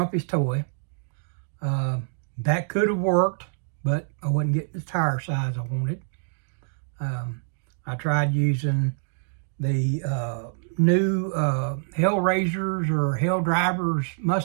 toy. That could have worked, but I wasn't getting the tire size I wanted. I tried using the new Hellraisers or Hell Drivers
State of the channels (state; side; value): silent; left; digital silence